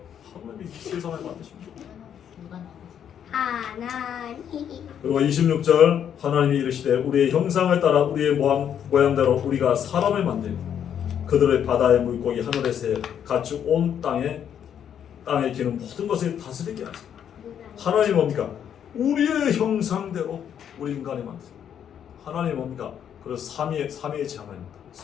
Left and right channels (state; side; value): quieter; right; 9.0 dB